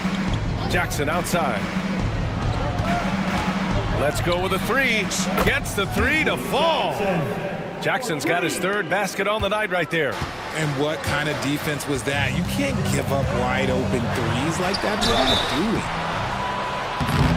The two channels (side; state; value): both; identical; correlation 1.00